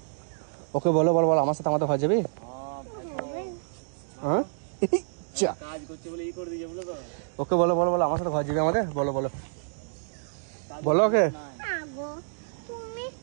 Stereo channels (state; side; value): silent; left; digital silence